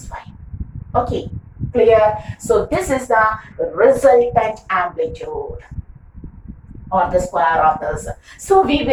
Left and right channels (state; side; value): identical; both; correlation 1.00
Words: phi. Okay, clear? So this is the resultant amplitude, or the square of the result. So we